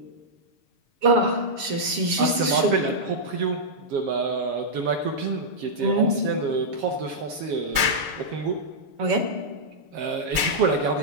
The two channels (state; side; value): late; left; 7.2 ms